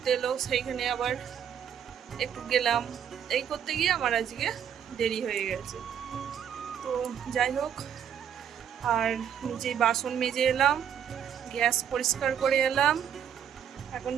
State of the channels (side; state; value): left; quieter; 8.8 dB